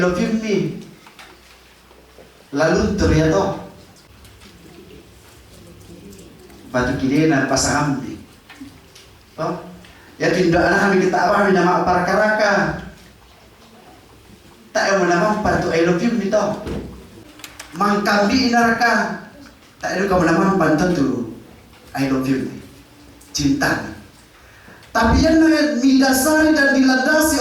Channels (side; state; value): both; identical; correlation 1.00